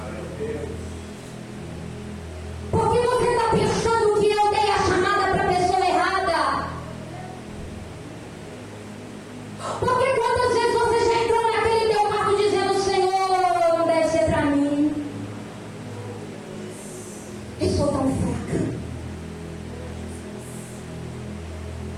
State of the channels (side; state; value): both; identical; correlation 1.00